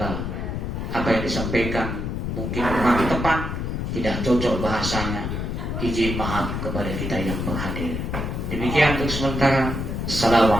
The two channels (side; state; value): left; noise; rumble, 3 dB below the sound